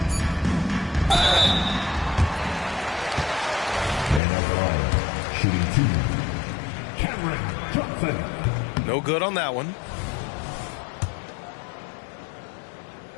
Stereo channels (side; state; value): right; drops out; at 4.2 s